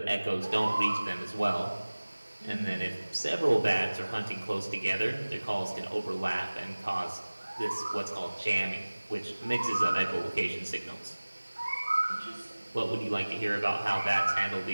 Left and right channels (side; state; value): both; inverted; correlation -1.00